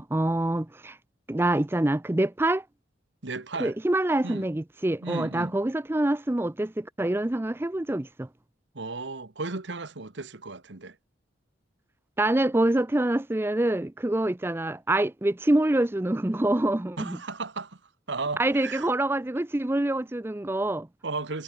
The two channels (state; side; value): normal; both; correlation 0.82